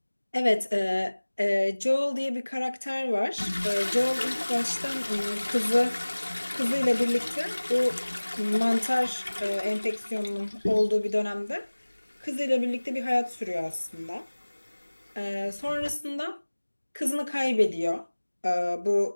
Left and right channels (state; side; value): inverted; both; correlation -1.00